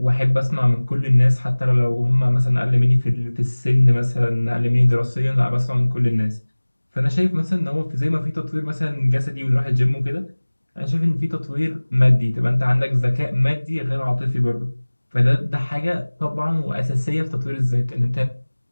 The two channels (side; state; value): both; inverted; correlation -1.00